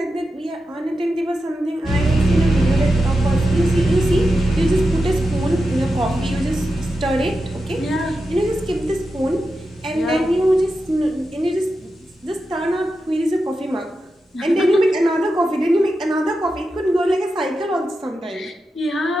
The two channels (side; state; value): both; normal; correlation 0.90